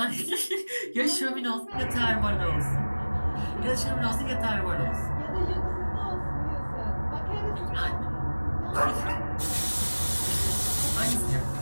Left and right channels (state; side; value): inverted; both; correlation -1.00